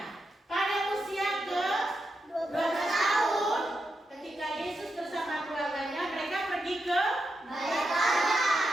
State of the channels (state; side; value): normal; both; correlation 0.86